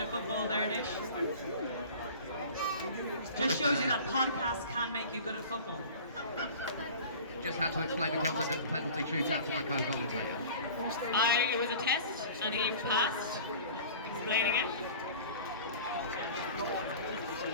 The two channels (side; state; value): both; inverted; correlation -0.41